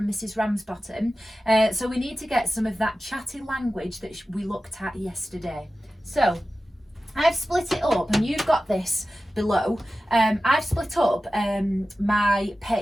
Mrs. Ramsbottom, so we need to get some of that chatty language that we looked at yesterday. So I've split it up, and you've got this below. I've split up my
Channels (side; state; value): both; normal; correlation 0.94